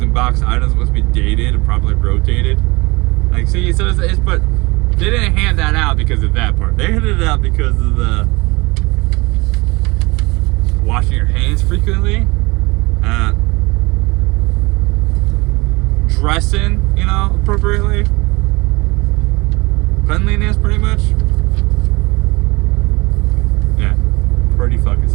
and boxed items must be dated and properly rotated. Like, see, so it's but they didn't hand that out because of that part. They handed it out because of the washing your hands frequently, dressing, you know, appropriately, cleanliness, pretty much. Yeah, pretty fucking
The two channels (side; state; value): left; quieter; 24.3 dB